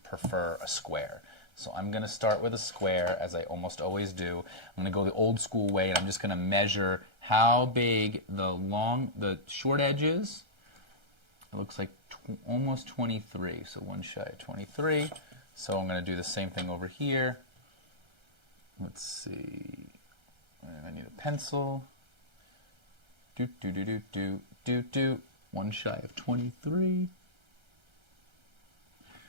prefer a square. So I'm going to start with a square, as I almost always do. I'm going to go the old school way, and I'm just going to measure how big the short edge is. It looks like almost 23, so one shy of 23. So I'm going to do the same thing over here. Let's see. I need a pencil. One shy of 23.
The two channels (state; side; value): late; left; 1.3 ms